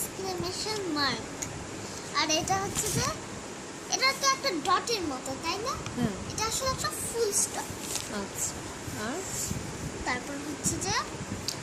মার্ক। আর এটা হচ্ছে যে এটা তো একটা ডটের মতো, তাই না? এটা আসলে একটা ফুল স্টপ। আচ্ছা, আর তারপর হচ্ছে যে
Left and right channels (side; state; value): both; identical; correlation 1.00